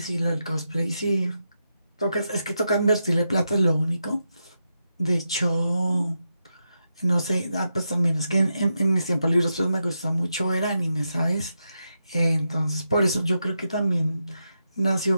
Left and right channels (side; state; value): both; inverted; correlation -0.86